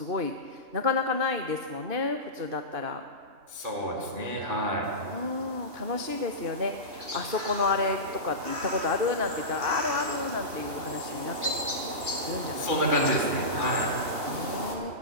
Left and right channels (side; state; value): left; late; 2.8 ms